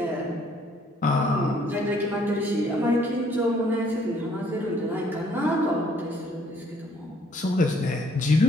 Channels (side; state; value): both; normal; correlation 0.64